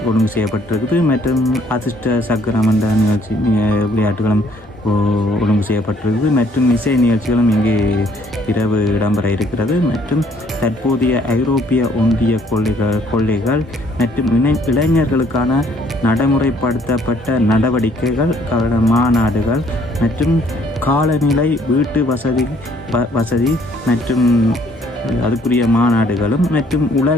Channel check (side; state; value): both; normal; correlation 0.63